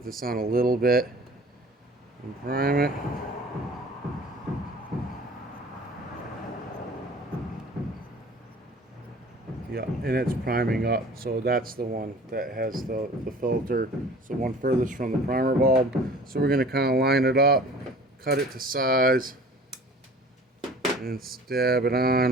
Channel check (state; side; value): normal; both; correlation 0.45